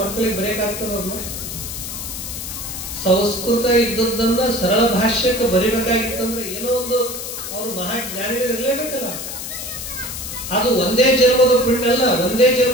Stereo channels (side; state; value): left; noise; hiss, 7 dB below the sound